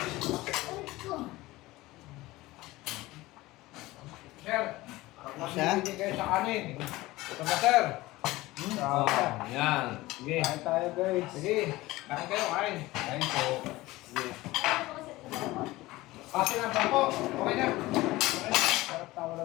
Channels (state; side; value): quieter; right; 19.0 dB